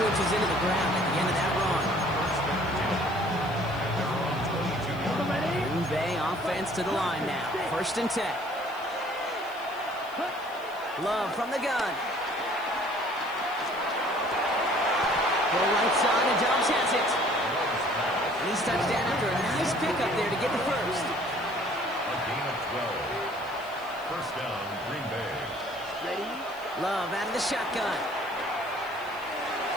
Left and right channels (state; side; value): noise; left; hiss, 23 dB below the sound